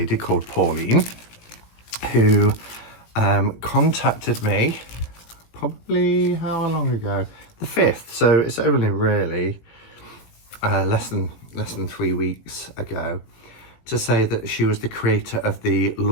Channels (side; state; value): right; late; 18 ms